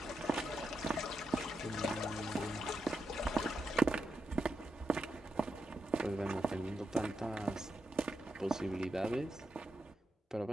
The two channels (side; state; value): both; normal; correlation 0.86